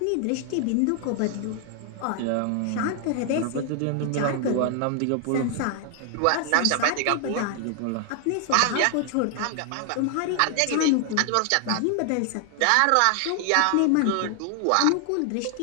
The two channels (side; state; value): both; different; correlation 0.00